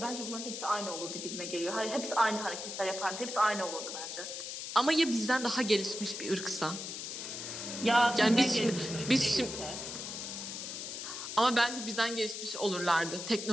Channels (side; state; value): left; noise; hiss, 7 dB below the sound